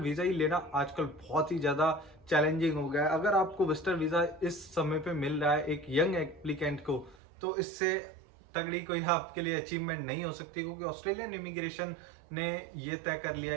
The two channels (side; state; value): left; drops out; at 7.2 s